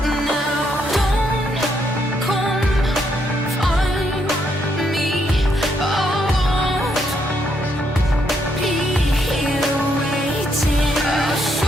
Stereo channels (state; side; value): normal; both; correlation 0.75